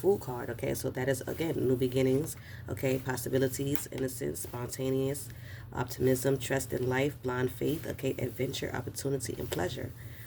card, okay? So that is, again, new beginnings, okay? Possibilities, innocence, spontaneous, optimism, trust in life, blind faith, okay? Adventure, opportunity, and pleasure.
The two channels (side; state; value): both; identical; correlation 1.00